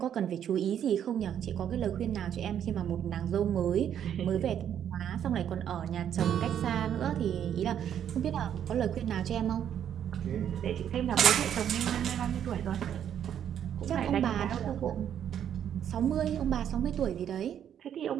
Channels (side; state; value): left; quieter; 9.5 dB